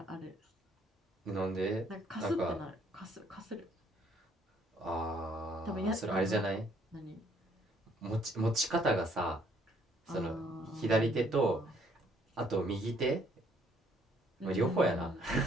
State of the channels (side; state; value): both; normal; correlation 0.65